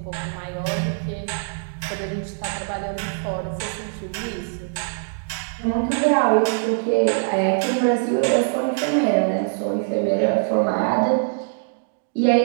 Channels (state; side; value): silent; left; digital silence